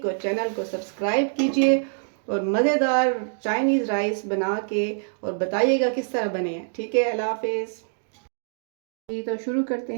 और चैनल को सब्सक्राइब कीजिए और मज़ेदार चाइनीज़ राइस बना के और बताइएगा किस तरह बने। ठीक है, अल्लाह हाफिज़। जी, तो शुरू करते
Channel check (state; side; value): silent; left; digital silence